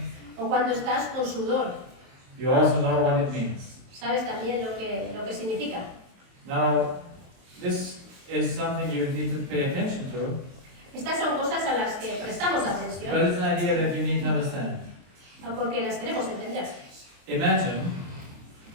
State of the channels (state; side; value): late; left; 23 ms